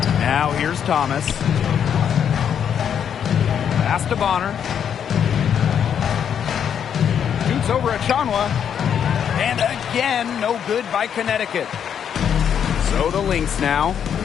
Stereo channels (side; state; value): right; quieter; 8.4 dB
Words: Now here's Thomas. Pass to Bonner. Shoots over Achanwa. And again, no good by Connecticut. So the Lynx now,